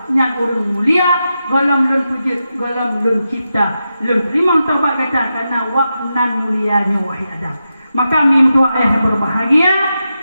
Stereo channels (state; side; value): inverted; both; correlation -0.89